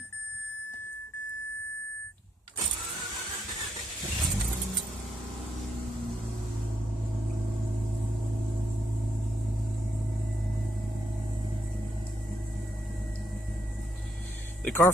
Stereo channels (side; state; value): both; normal; correlation 0.78